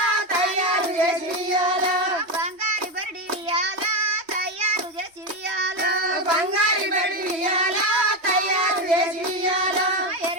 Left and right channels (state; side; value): late; left; 3.2 ms